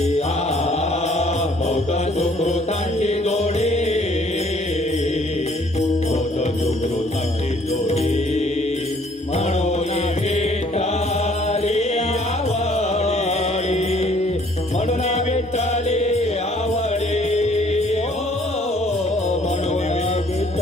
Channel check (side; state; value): both; normal; correlation 0.60